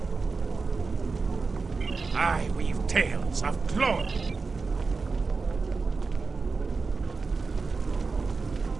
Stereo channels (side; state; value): left; quieter; 4.4 dB